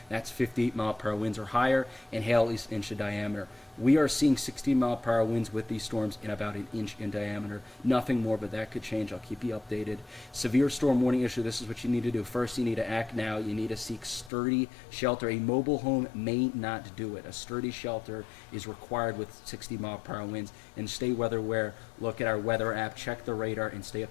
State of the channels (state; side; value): drops out; right; at 14.3 s